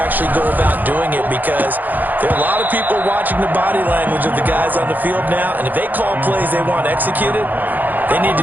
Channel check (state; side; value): late; left; 0.085 ms